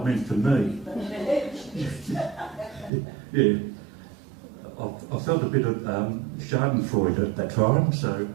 meant for me. Yeah. I felt a bit of schadenfreude at that time, so a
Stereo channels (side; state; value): left; drops out; at 2.9 s